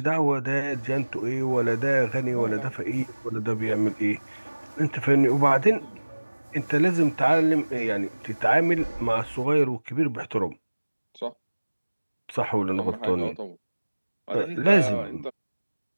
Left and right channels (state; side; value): inverted; both; correlation -1.00